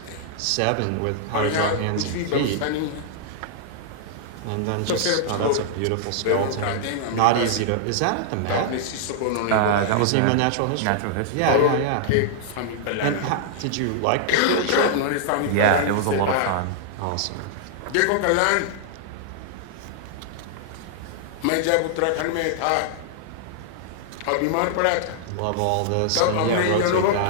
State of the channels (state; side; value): different; both; correlation -0.01